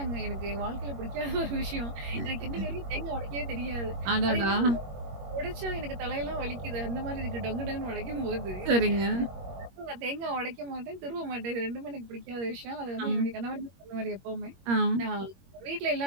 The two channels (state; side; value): late; left; 21 ms